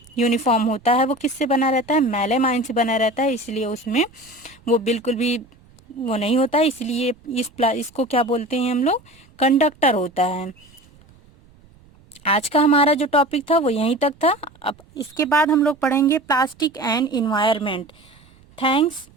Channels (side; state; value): right; noise; rumble, 28 dB below the sound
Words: यूनिफॉर्म होता है वो किससे बना रहता है, मेलामाइन से बना रहता है, इसलिए उसमें वो बिल्कुल भी वो नहीं होता है। इसलिए इसको क्या बोलते हैं हम लोग, कंडक्टर होता है। आज का हमारा जो टॉपिक था वो यहीं तक था। अब इसके बाद हम लोग पढ़ेंगे plastic and environment. Thanks